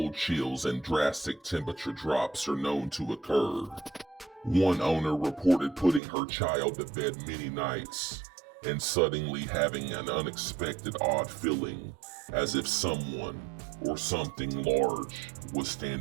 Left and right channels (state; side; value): drops out; left; at 6.0 s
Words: chills and drastic temperature drops are known to occur. One owner reported putting her child to bed many nights and suddenly having an unexpected odd feeling as if someone or something large was